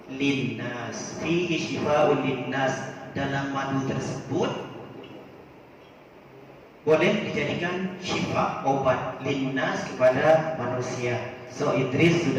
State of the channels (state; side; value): identical; both; correlation 1.00